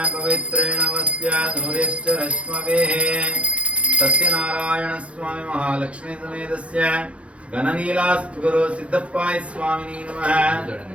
ಪವಿತ್ರೇಣ ವಸ್ತ್ಯಾಧುರ್ಯಶ್ಚ ರಶ್ಮವೇಃ. ಸತ್ಯನಾರಾಯಣ ಸ್ವಾಮಿ ಮಹಾಲಕ್ಷ್ಮೀ ಸಮೇತಸ್ಯ ಘನನೀಲಾಸ್ತು ಗುರು ಸಿದ್ದಪ್ಪಾಯ ಸ್ವಾಮಿನೇ ನಮಃ.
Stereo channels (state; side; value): late; left; 0.062 ms